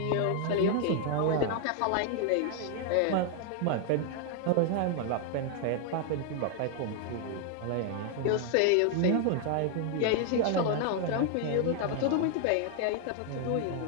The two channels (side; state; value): both; different; correlation 0.00